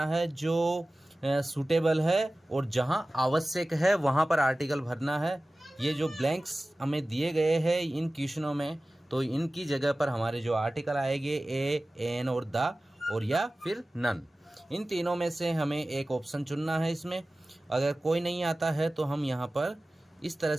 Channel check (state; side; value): normal; both; correlation 0.97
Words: है जो सूटेबल है और जहाँ आवश्यक है वहाँ पर आर्टिकल भरना है। ये जो ब्लैंक्स हमें दिए गए हैं इन क्वेश्चनों में, तो इनकी जगह पर हमारे जो आर्टिकल आएंगे ए, एन और द और या फिर नन, इन तीनों में से हमें एक ऑप्शन चुनना है। इसमें अगर कोई नहीं आता है तो हम यहाँ पर इस तरह